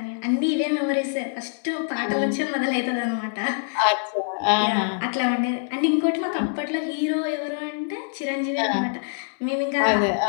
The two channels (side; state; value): right; silent; 62 dB below the other